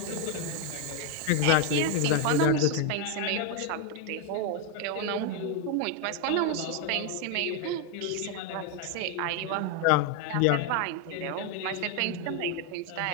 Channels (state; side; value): different; both; correlation 0.01